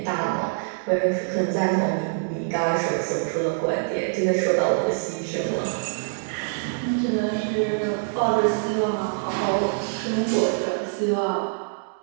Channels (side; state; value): left; silent; digital silence